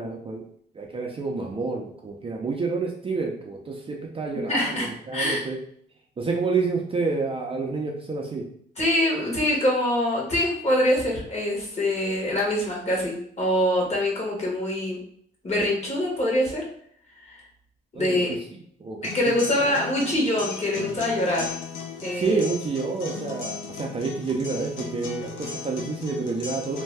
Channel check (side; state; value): both; normal; correlation 0.51